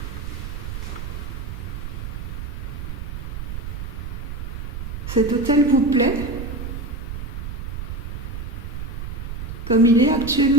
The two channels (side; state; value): right; noise; rumble, 6 dB below the sound